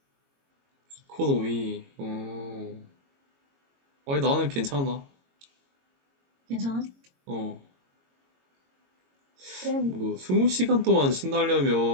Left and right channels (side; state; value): left; late; 22 ms